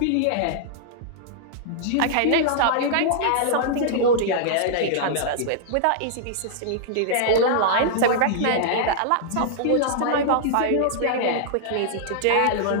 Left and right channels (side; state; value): both; different; correlation -0.01